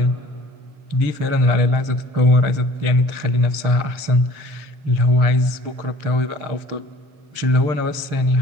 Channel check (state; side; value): late; left; 6.6 ms